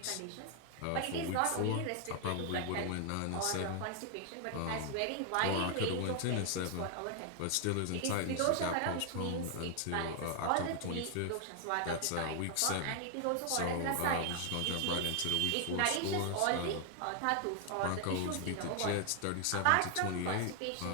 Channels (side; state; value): both; different; correlation 0.00